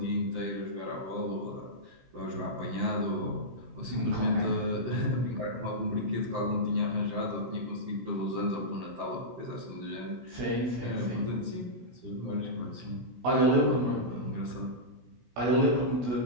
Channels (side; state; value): left; late; 16 ms